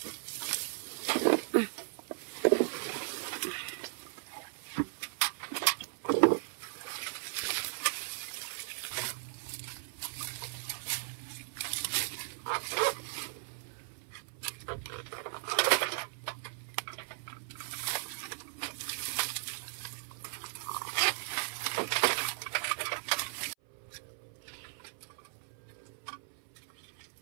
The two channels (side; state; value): left; silent; 53 dB below the other